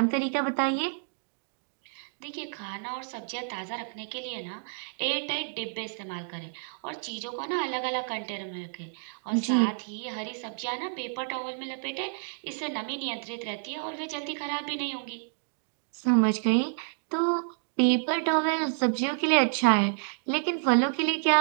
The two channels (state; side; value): silent; left; digital silence